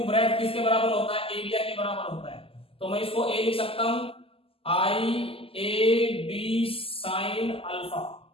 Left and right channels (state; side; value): late; right; 0.27 ms